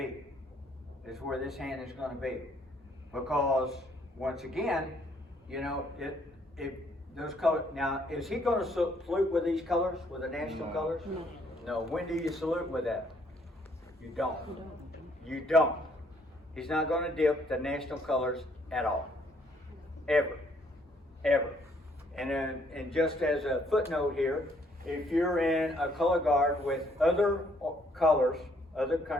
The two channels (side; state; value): both; normal; correlation 0.67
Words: It's where this hand is going to be. Because, once again, you know, if those colors, now, is he going to salute with these colors, with the national colors? No. No. When do you salute with that? You don't. You don't. He's not going to dip the national colors at all. Ever. Ever. And just as a footnote here, if you're in a color guard with other colors, other